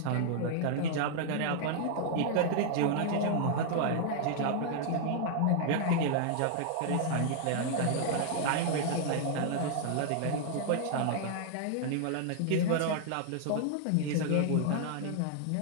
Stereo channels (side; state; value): both; different; correlation -0.01